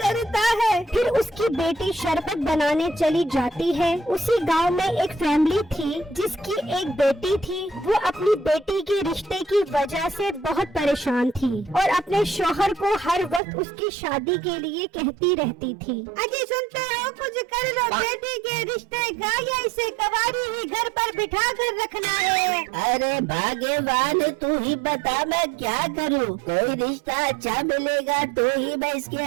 करता है। फिर उसकी बेटी शरबत बनाने चली जाती है। उसी गांव में एक फैमिली थी जिसकी एक बेटी थी। वो अपनी बेटी के रिश्ते की वजह से बहुत परेशान थी और अपने शौहर को हर वक्त उसकी शादी के लिए कहती रहती थी। अजी सुनते हो, कुछ कर लो बेटी के रिश्ते का, या इसे कवारी ही घर पर बिठा कर रखना है। अरे भाग्यवान, तू ही बता मैं क्या करूं? कोई रिश्ता अच्छा मिलेगा तो ही मैं इसके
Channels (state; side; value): drops out; left; at 13.4 s